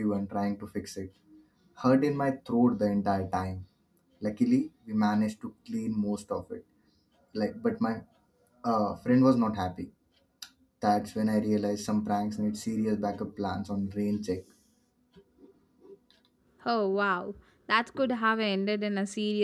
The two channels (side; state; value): both; identical; correlation 1.00